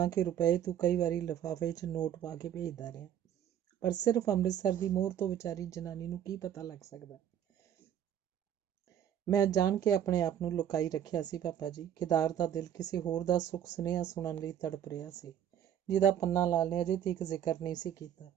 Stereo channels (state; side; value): quieter; left; 9.9 dB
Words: ਰੁਪਏ ਤੂੰ ਕਈ ਵਾਰੀ ਲਿਫਾਫੇ 'ਚ ਨੋਟ ਪਾ ਕੇ ਭੇਜਦਾ ਰਿਹਾ, ਪਰ ਸਿਰਫ ਅੰਮ੍ਰਿਤਸਰ ਦੀ ਮੋਹਰ ਤੋਂ ਵਿਚਾਰੀ ਜਨਾਨੀ ਨੂੰ ਕੀ ਪਤਾ ਲੱਗ ਸਕਦਾ? ਮੈਂ ਜਾਣ ਕੇ ਆਪਣੇ ਆਪ ਨੂੰ ਲੁਕਾਈ ਰੱਖਿਆ ਸੀ ਪਾਪਾ ਜੀ। ਕੇਦਾਰ ਦਾ ਦਿਲ ਕਿਸੇ ਹੋਰ ਦਾ ਸੁੱਖ ਸੁਨੇਹਾ ਸੁਣਨ ਲਈ ਤੜਪ ਰਿਹਾ ਸੀ, ਜਿਹਦਾ ਪੰਨਾ ਲਾਲ ਨੇ ਅਜੇ ਤੱਕ ਜ਼ਿਕਰ ਨਹੀਂ ਸੀ ਕੀਤਾ।